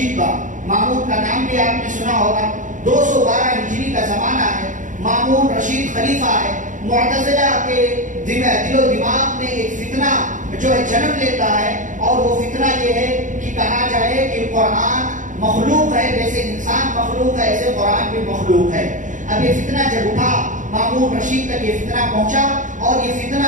کا، مامون کا نام بھی آپ نے سنا ہوگا۔ 212 ہجری کا زمانہ ہے، مامون رشید خلیفہ ہے۔ معتزلہ کے دل و دماغ میں ایک فتنہ جو ہے جنم لیتا ہے، اور وہ فتنہ یہ ہے کہ کہا جائے کہ قرآن مخلوق ہے، جیسے انسان مخلوق ہے ایسے قرآن بھی مخلوق ہے۔ اب یہ فتنہ جب اٹھا، مامون رشید تک یہ فتنہ پہنچا، اور یہ فتنہ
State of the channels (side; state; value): left; late; 0.37 ms